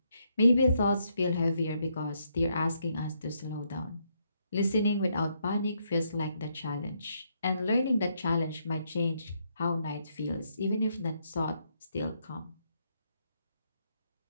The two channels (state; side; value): inverted; both; correlation -0.76